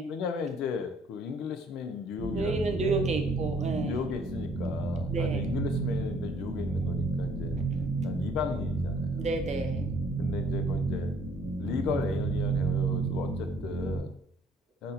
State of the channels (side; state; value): both; normal; correlation 0.61